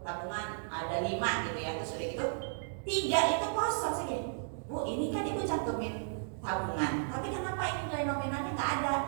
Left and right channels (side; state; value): left; silent; digital silence